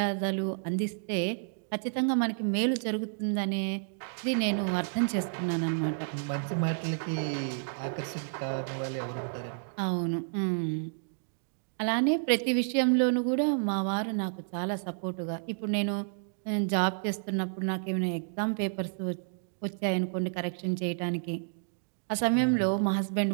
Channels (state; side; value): silent; left; digital silence